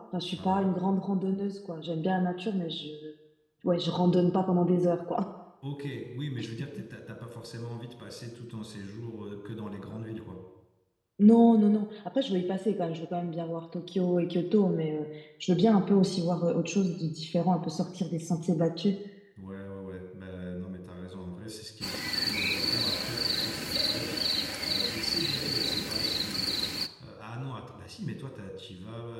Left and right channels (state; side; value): identical; both; correlation 1.00